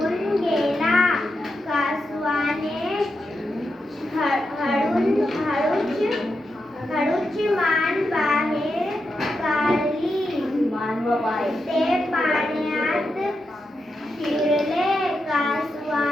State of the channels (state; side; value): normal; both; correlation 0.87